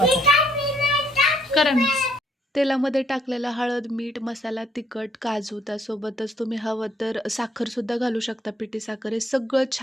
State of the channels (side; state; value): both; normal; correlation 0.67